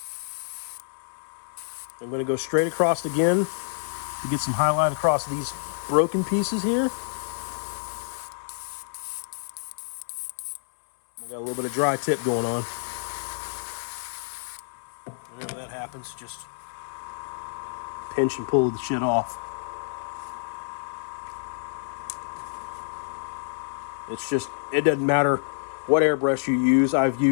I'm going to go straight across again to get some highlight across these broken pieces here. I got a little bit of dry tip going on. Whenever that happens, just pinch and pull the shit off. It's just, it doesn't matter what airbrush you use. I've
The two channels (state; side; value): silent; right; 60 dB below the other